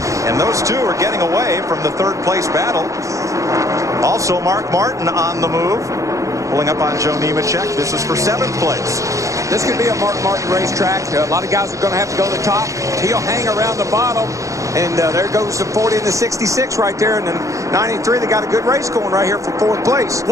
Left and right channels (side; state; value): left; late; 0.16 ms